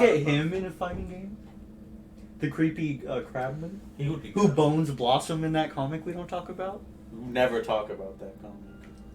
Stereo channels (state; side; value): identical; both; correlation 1.00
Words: Powerpuff- him in a fighting game? The creepy crabman? He would be Who good. bones Blossom in that comic we don't talk about? Never talk about that comic.